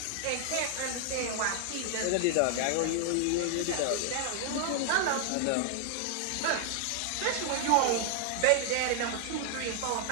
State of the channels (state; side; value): different; both; correlation 0.00